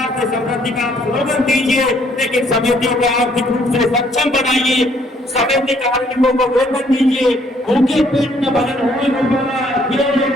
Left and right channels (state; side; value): normal; both; correlation 0.65